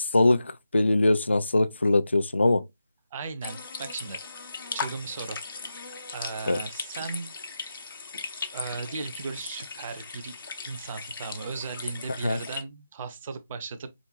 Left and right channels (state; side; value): inverted; both; correlation -0.89